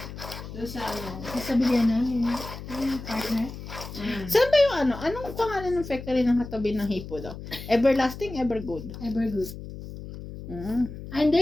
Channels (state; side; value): noise; left; hum, 11 dB below the sound